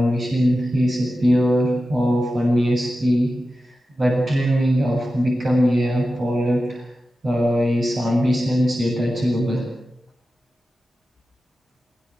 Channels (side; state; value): both; normal; correlation 0.93